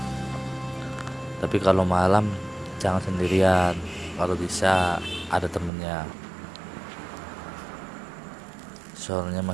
Tapi kalau malam jangan sendirian, kalau bisa ada temennya. Soalnya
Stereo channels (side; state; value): left; drops out; at 5.7 s